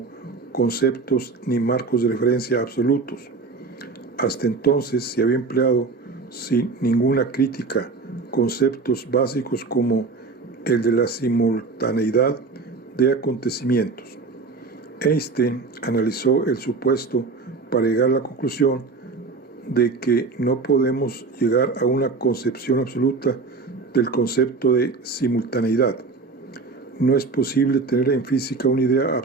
conceptos ni marcos de referencia absolutos. Hasta entonces se había empleado sin ninguna crítica conceptos básicos como el de la simultaneidad de acontecimientos. Einstein analizó el supuesto para llegar a la conclusión de que no podemos llegar a una concepción absoluta del concepto de simultaneidad. No es posible tener en física una idea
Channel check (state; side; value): quieter; left; 4.2 dB